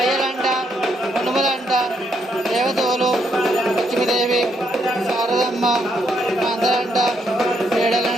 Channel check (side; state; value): both; normal; correlation 0.75